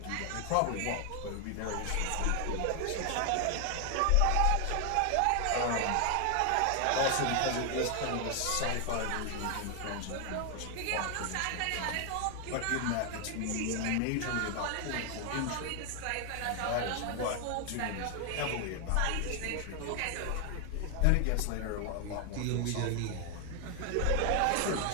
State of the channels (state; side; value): different; both; correlation 0.00